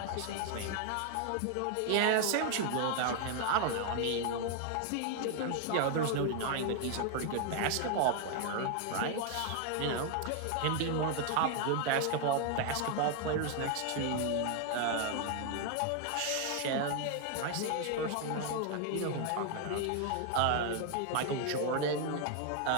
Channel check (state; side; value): different; both; correlation 0.00